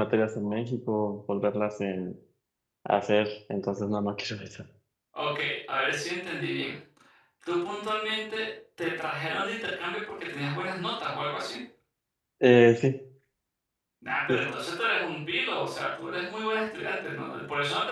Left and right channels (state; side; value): identical; both; correlation 1.00